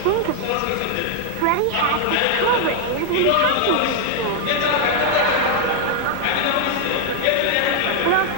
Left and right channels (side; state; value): both; different; correlation 0.00